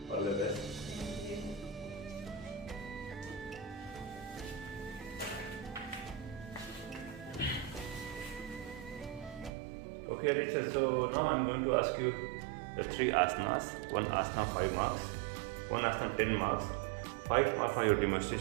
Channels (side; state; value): left; drops out; at 9.5 s